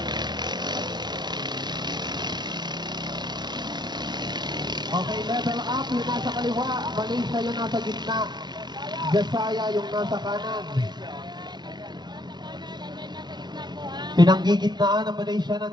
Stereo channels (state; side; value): late; left; 0.20 ms